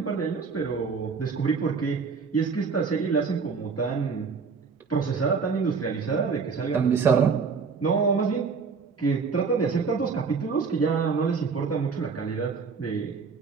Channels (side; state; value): left; quieter; 5.2 dB